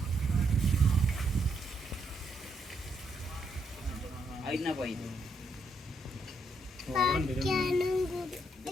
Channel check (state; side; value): normal; both; correlation 0.76